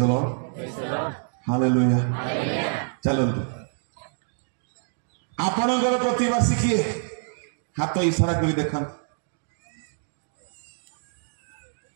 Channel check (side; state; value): left; silent; digital silence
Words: द लॉर्ड हालेलुया चलंतु आपणकर प्रतिवासी किए हाथ इशारा कर देखा